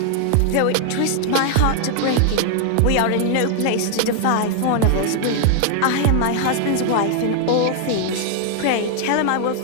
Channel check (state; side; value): different; both; correlation 0.00